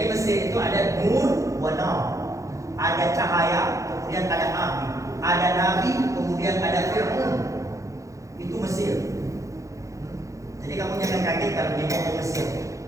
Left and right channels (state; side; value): late; left; 0.15 ms